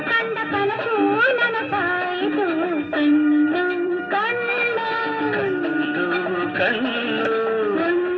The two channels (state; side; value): identical; both; correlation 1.00